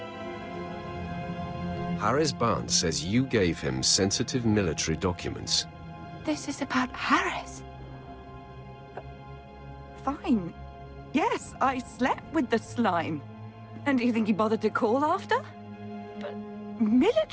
Harris Barnes says you gave him sensitive military documents. This is about Harris. Fine. Yes, I slept with the slime. And do you think he bothered to call after? But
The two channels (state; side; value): identical; both; correlation 1.00